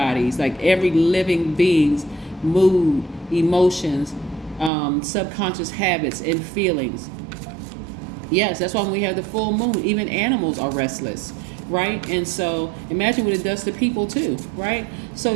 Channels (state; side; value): drops out; left; at 4.7 s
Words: like every living being's mood, emotions, subconscious habits and feelings. Yes, that's why when we have the full moon, even animals are restless, right? And so imagine what it does to people too, right? So